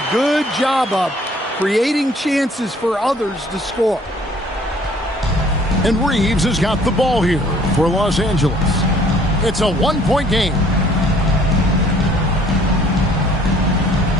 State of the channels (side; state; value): both; normal; correlation 0.58